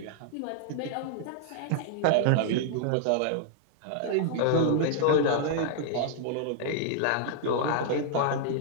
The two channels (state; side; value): different; both; correlation -0.01